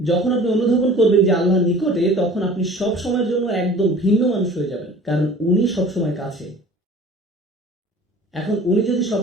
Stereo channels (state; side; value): normal; both; correlation 0.45